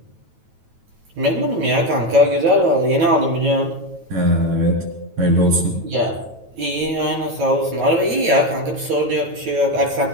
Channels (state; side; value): late; left; 9.1 ms